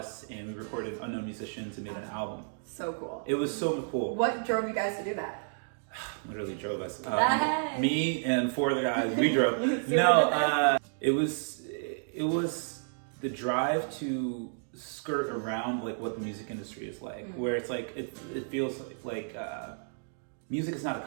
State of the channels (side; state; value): left; silent; digital silence